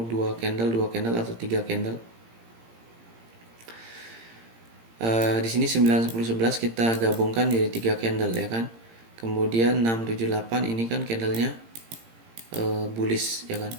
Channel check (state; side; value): late; left; 17 ms